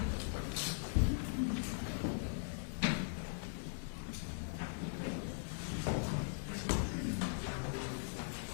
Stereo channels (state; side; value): silent; right; digital silence